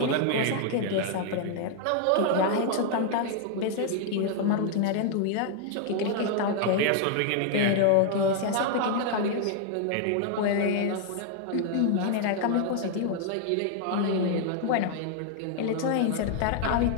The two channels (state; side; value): different; both; correlation 0.00